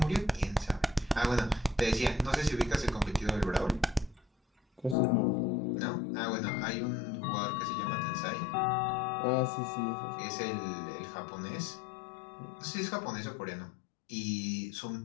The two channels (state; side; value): drops out; right; at 5.0 s